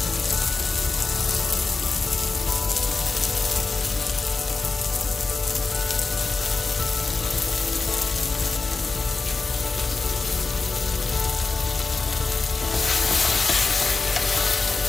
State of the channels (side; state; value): right; quieter; 4.1 dB